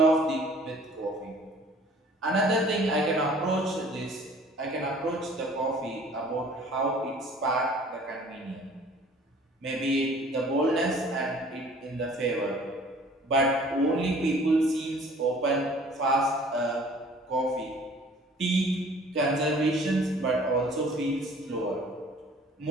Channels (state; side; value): normal; both; correlation 0.52